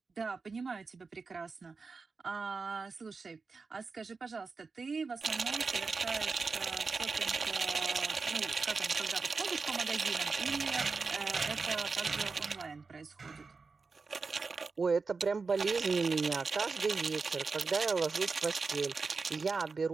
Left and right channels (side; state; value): left; quieter; 4.5 dB